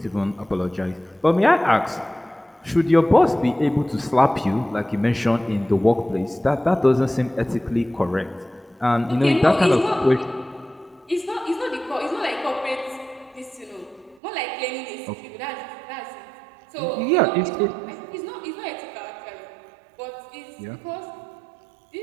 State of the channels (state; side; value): drops out; left; at 14.2 s